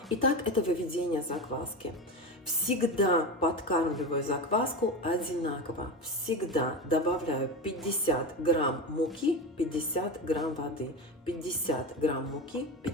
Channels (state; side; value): normal; both; correlation 0.22